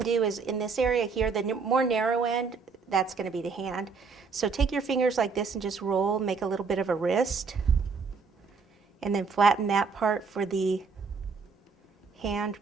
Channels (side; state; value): left; quieter; 5.0 dB